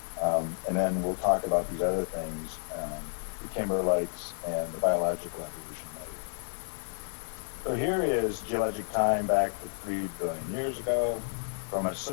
And then we'll talk about these other things, the Kimberlites and the biological evolution later. So here is geologic time back to 3 billion years ago from an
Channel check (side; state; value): right; silent; digital silence